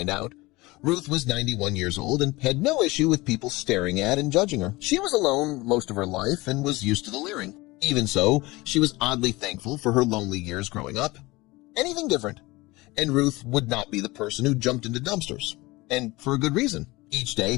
out. Ruth was 91 years old and had no issue with people staring at and judging her. She was alone most of her life and was used to the leering. Even so, she was oddly thankful for her lonely years growing up. Anything different. And Ruth would not be the person who jumped into dumpsters. And for a good reason. Each day,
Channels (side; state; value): right; quieter; 21.6 dB